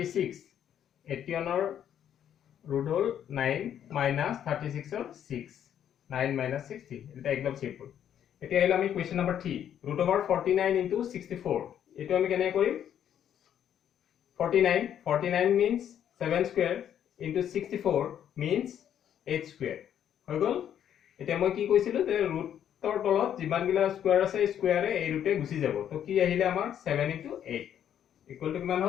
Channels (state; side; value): quieter; right; 9.8 dB